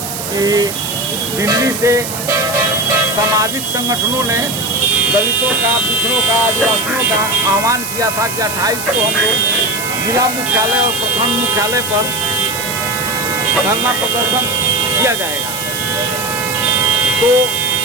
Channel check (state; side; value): noise; right; hiss, 7 dB below the sound